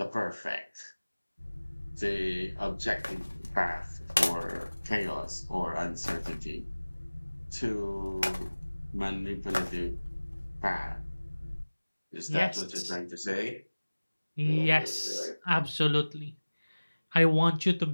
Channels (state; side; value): inverted; both; correlation -1.00